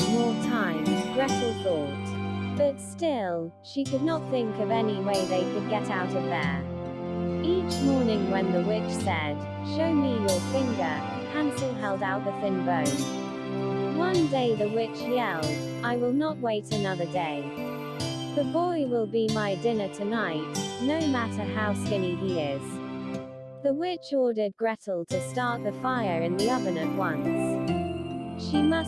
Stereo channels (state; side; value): identical; both; correlation 1.00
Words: more time, Gretel thought. But still, she could not think of any way they could get out of there. Each morning when the witch said, show me your finger, Hansel held out the thin bone. One day the witch yelled, I will not wait another day. The boy will be my dinner tonight, no matter how skinny he is. The witch ordered Gretel to start the fire in the oven at once. She